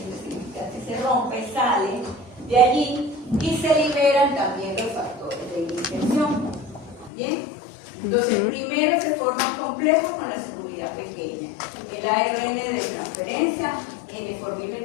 que se rompe, sale de allí y se liberan también los factores de iniciación. ¿Bien? Entonces, primero se forman complejos con la subunidad pequeña. El ARN de transferencia,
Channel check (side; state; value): right; drops out; at 7.1 s